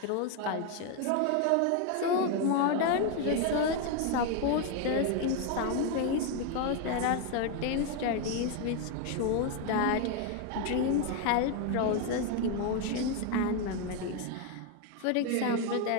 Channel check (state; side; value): different; both; correlation 0.01